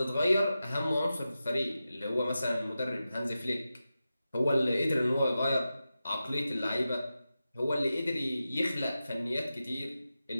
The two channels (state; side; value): inverted; both; correlation -0.92